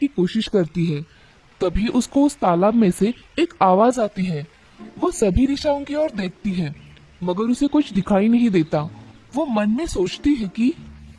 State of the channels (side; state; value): both; identical; correlation 1.00